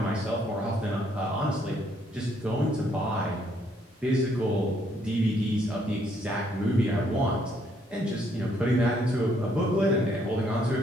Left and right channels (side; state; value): both; normal; correlation 0.69